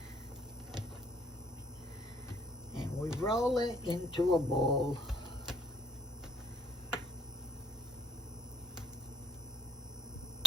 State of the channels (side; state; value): both; normal; correlation 0.59